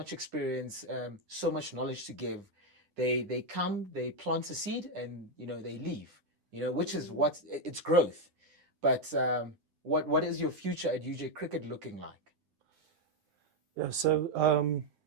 experience, so much knowledge to give, they come, they plant a seed, and they leave. Which is what it's growth. But what is your future at UJ Cricket looking like? Yeah, so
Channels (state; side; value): late; left; 9.9 ms